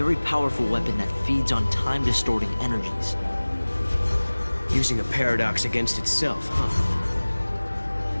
powerful weapon that feeds on time-distorting energies. Using a paradox against itself, huh?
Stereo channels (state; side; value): inverted; both; correlation -1.00